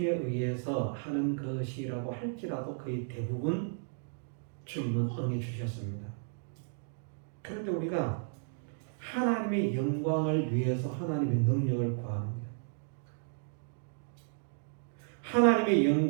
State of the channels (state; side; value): silent; left; digital silence